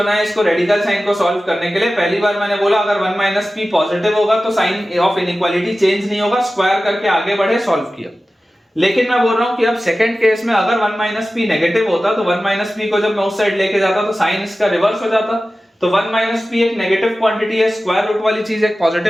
इसको रेडिकल साइन को सॉल्व करने के लिए। पहली बार मैंने बोला अगर 1 - p पॉजिटिव होगा तो साइन ऑफ इनइक्वालिटी चेंज नहीं होगा, स्क्वायर करके आगे बढ़े, सॉल्व किया। लेकिन मैं बोल रहा हूं कि अब सेकंड केस में अगर 1 - p नेगेटिव होता तो 1 - p को जब मैं उस साइड लेके जाता तो साइन इसका रिवर्स हो जाता। तो 1 - p एक नेगेटिव क्वांटिटी है, स्क्वायर रूट वाली चीज एक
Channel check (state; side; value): normal; both; correlation 0.95